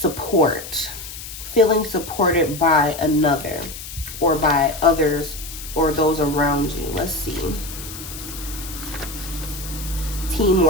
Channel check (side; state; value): left; noise; hiss, 11 dB below the sound